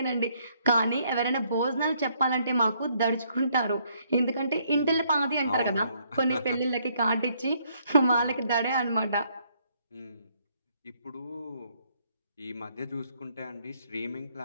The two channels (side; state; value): both; inverted; correlation -0.69